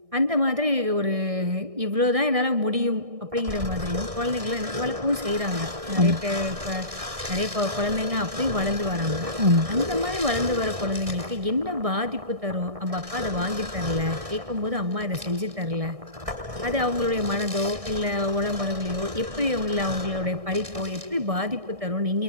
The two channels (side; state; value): left; late; 1.6 ms